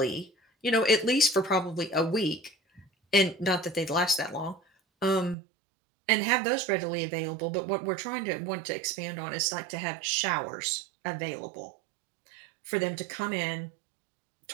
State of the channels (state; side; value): drops out; left; at 5.4 s